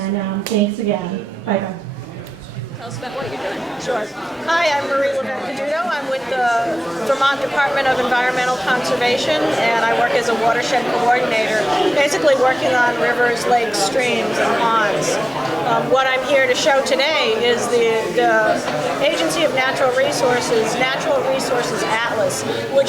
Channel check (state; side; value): normal; both; correlation 0.96